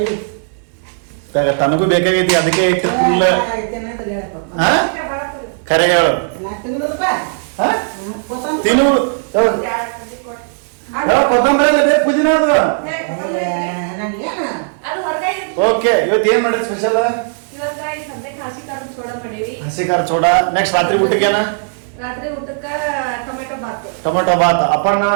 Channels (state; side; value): silent; left; digital silence